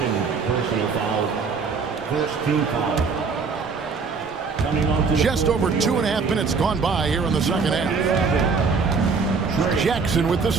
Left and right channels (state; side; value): quieter; left; 5.0 dB